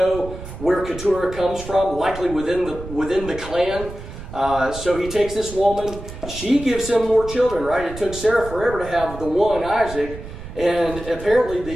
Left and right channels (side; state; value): right; noise; rumble, 12 dB below the sound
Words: where Keturah comes from, likely within the clan. So he takes this woman. She gives him more children, right? It took Sarah forever to have the one, Isaac. And apparently